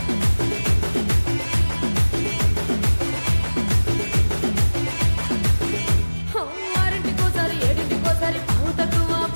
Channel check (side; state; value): both; inverted; correlation -1.00